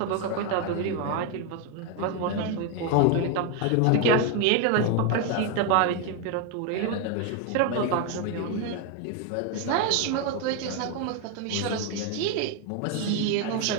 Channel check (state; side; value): different; both; correlation 0.01